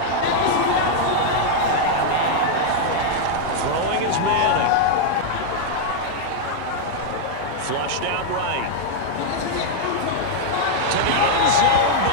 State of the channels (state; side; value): different; both; correlation -0.01